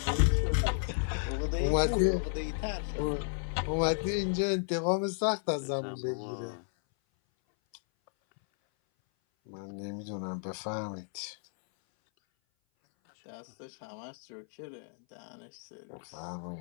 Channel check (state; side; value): silent; right; 56 dB below the other